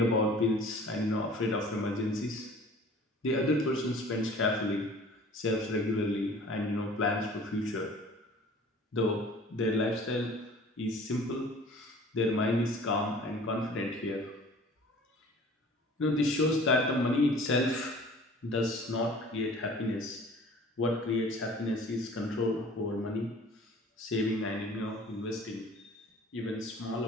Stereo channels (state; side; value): normal; both; correlation 0.47